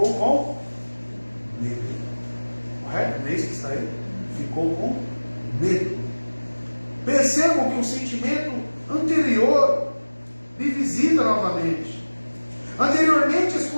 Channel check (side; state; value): both; inverted; correlation -1.00